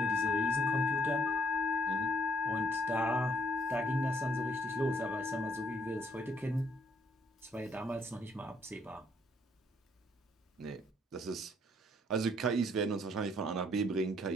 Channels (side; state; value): both; normal; correlation 0.68